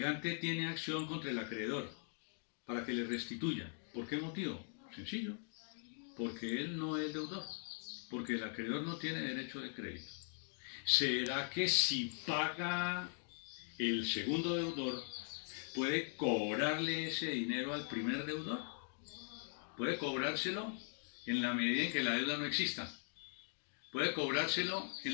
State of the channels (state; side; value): silent; right; 51 dB below the other